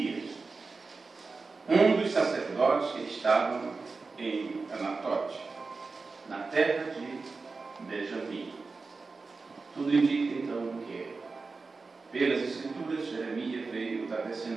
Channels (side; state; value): left; quieter; 4.1 dB